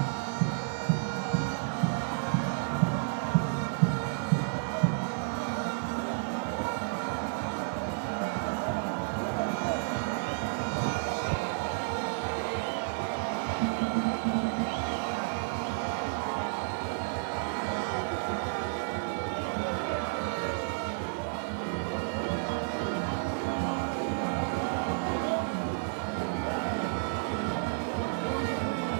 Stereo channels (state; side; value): silent; left; 57 dB below the other